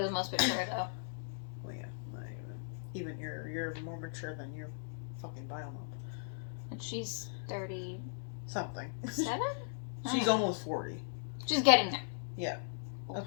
the most mature, though. Well, yeah. Not even you're more mature than your fucking bio mom. And she's 37? Something. I She's don't know. almost 40. She's getting there. Yeah.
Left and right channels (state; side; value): silent; right; digital silence